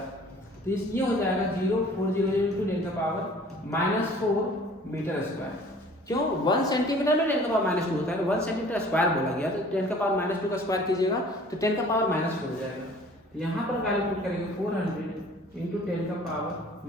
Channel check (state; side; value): normal; both; correlation 0.50